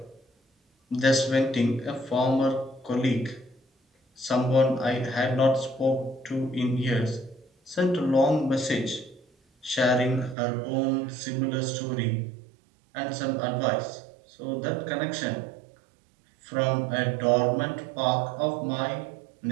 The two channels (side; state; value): left; drops out; at 10.4 s